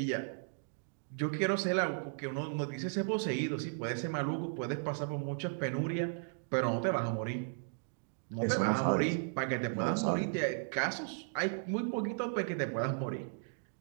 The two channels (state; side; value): silent; left; digital silence